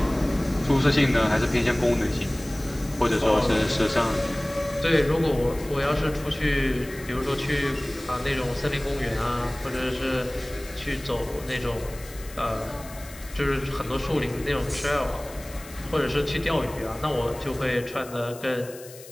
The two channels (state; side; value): noise; left; hiss, 18 dB below the sound